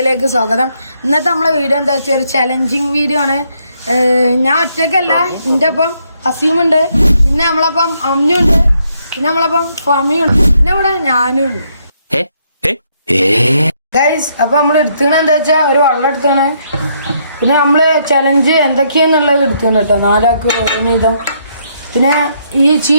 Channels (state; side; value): inverted; both; correlation -0.73